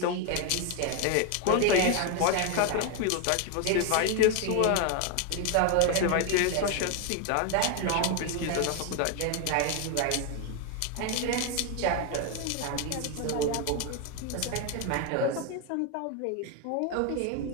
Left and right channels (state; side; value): different; both; correlation 0.01